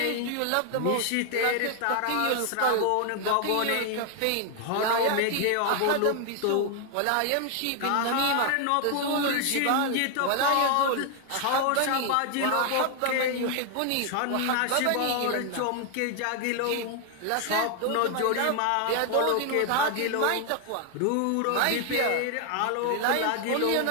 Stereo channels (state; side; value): different; both; correlation 0.00